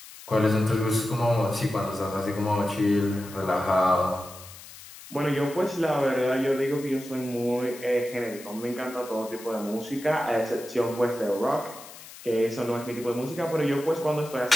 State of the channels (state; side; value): noise; left; hiss, 17 dB below the sound